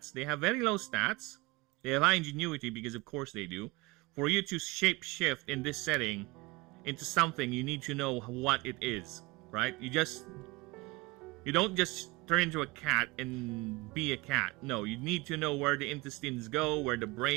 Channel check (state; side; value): quieter; left; 23.3 dB